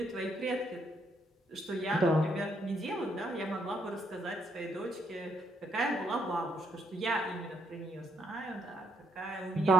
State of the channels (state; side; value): normal; both; correlation 0.73